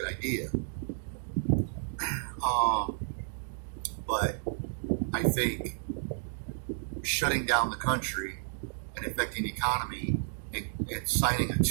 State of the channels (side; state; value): left; silent; digital silence